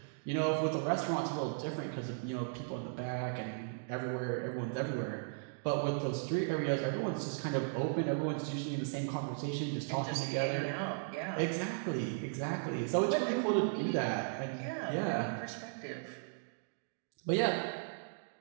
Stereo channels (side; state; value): left; silent; digital silence